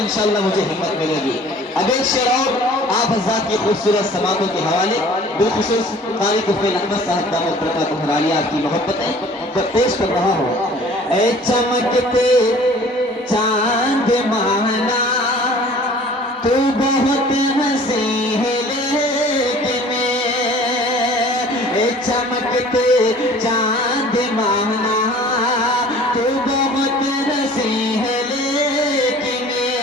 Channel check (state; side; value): normal; both; correlation 0.49